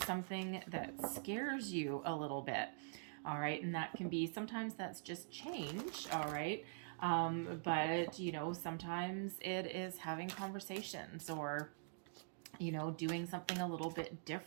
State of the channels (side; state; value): left; silent; digital silence